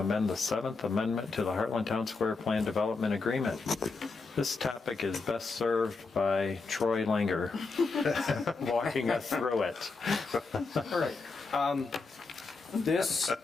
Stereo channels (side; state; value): right; quieter; 4.1 dB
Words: the 7th amendment to the Heartland Town Square Plan Development Agreement. This topic is best served by Troy Langer, walking us through it. All right. This